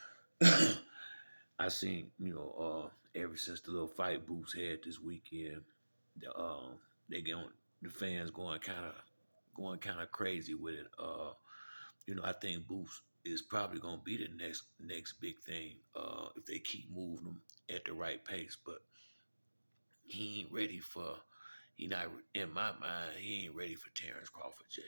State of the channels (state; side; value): inverted; both; correlation -1.00